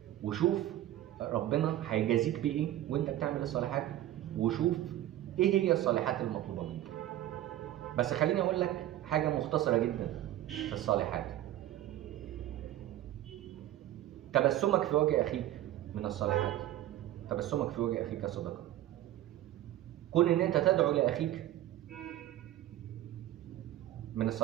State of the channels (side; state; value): left; quieter; 13.7 dB